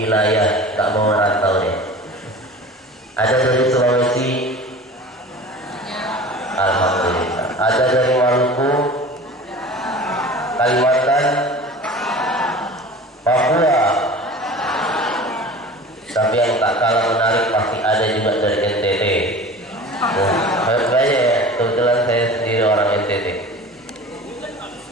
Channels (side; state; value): both; normal; correlation 0.39